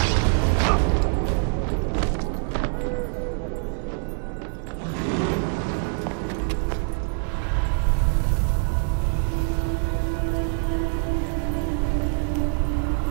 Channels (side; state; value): left; silent; 56 dB below the other